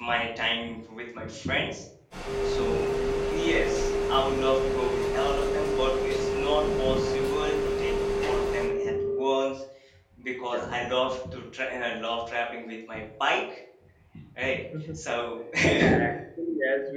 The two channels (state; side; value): identical; both; correlation 1.00